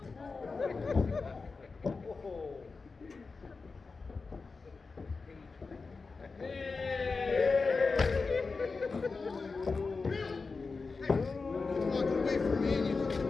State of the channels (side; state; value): right; quieter; 4.3 dB